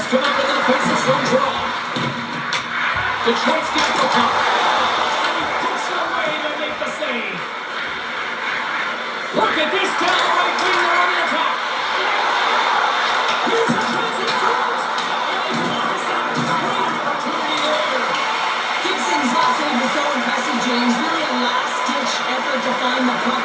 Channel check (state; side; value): identical; both; correlation 1.00